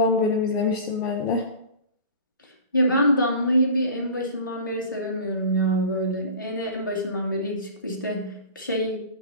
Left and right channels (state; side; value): inverted; both; correlation -0.38